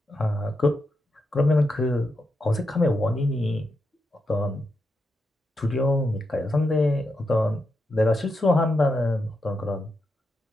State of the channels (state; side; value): normal; both; correlation 0.85